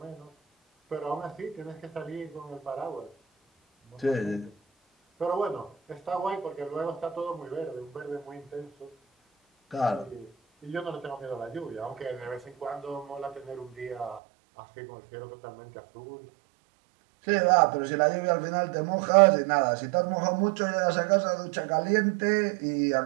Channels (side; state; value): left; drops out; at 14.2 s